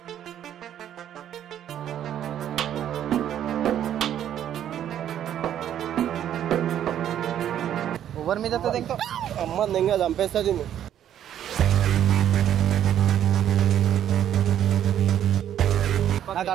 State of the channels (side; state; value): left; quieter; 10.5 dB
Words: ఎవరి మీద ఇంకా అమ్మ ఇంకా చంపేస్తుంది. నాకు